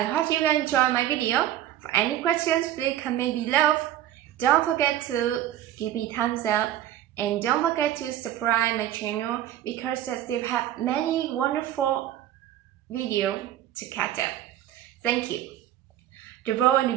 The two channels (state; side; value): quieter; left; 12.3 dB